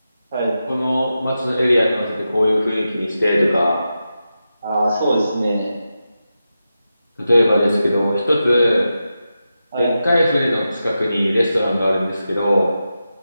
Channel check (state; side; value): inverted; both; correlation -0.90